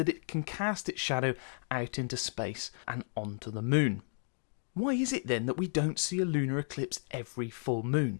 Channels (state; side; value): silent; right; 55 dB below the other